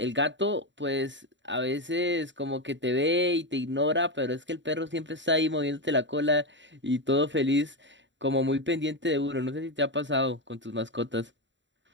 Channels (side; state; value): left; late; 0.53 ms